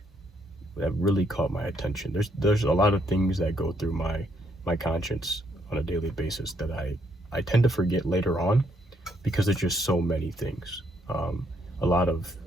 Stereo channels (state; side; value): normal; both; correlation 0.73